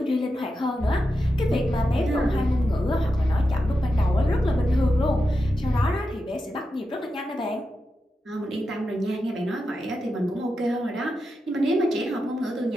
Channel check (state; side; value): normal; both; correlation 0.89